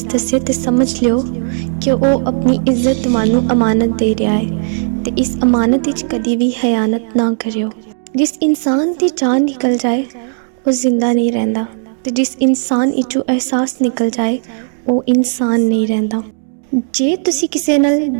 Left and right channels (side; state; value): left; silent; digital silence